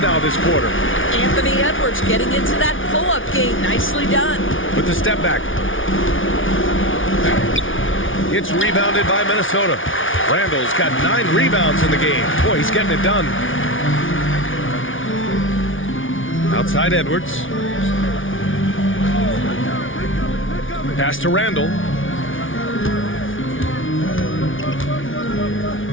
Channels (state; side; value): late; right; 0.57 ms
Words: now this quarter. Anthony Edwards getting into that pull-up game. Nicely done. With the step back. It's rebounded by Minnesota. Randall's got 9 rebounds in the game. Boy, he's getting it done. Outside Edwards. Pass to Randall.